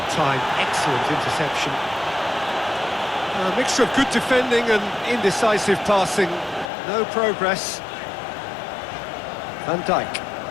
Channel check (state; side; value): drops out; right; at 6.7 s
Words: timed, excellent interception. A mixture of good defending and indecisive passing. No progress. Van Dijk.